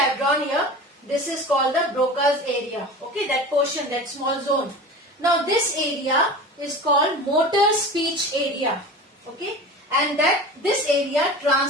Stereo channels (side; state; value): both; normal; correlation 0.34